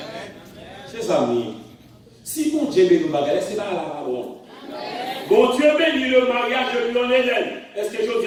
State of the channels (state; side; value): identical; both; correlation 1.00